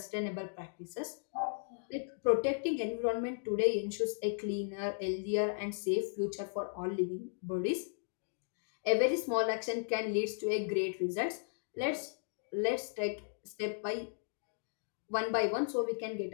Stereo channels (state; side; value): silent; right; digital silence